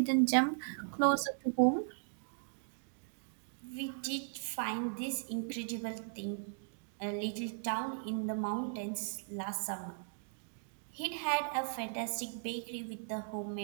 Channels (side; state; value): left; silent; digital silence